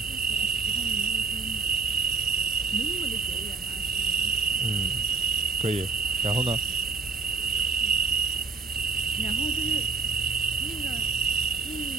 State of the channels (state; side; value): quieter; left; 4.7 dB